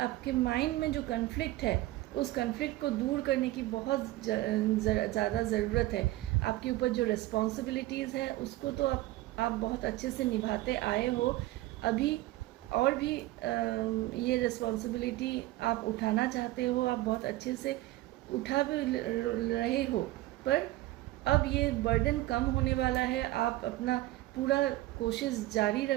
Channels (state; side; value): quieter; left; 17.2 dB